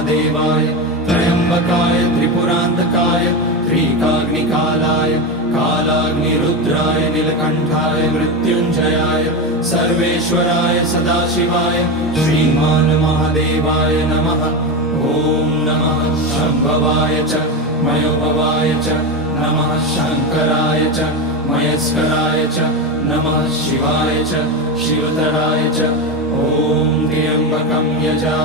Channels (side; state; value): both; normal; correlation 0.16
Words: त्र्यम्बकाय त्रिपुरान्तकाय त्रिकाग्निकालाय कालाग्निरुद्राय नीलकण्ठाय मृत्युञ्जयाय सर्वेश्वराय सदाशिवाय श्रीमान् महादेवाय नमः। ॐ नमः शम्भवाय च मयोभवाय च नमः शङ्कराय च मयस्कराय च नमः शिवाय च शिवतराय च। ॐ त्र्यम्बकं